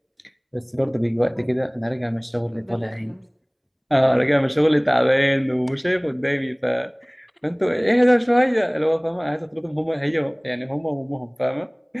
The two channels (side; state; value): both; identical; correlation 1.00